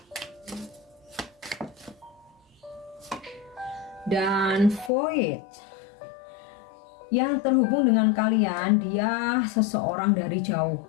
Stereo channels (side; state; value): right; drops out; at 4.9 s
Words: Dan void yang terhubung dengan kalian, dia seseorang dari jauh